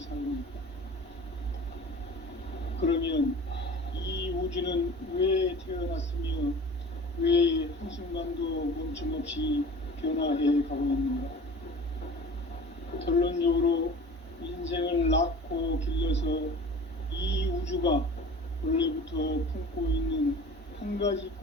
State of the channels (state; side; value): normal; both; correlation 0.41